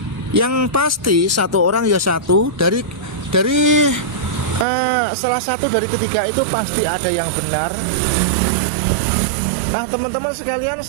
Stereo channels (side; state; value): left; drops out; at 4.7 s